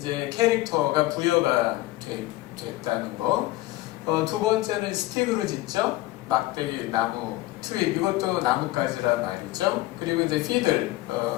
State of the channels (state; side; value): quieter; right; 17.7 dB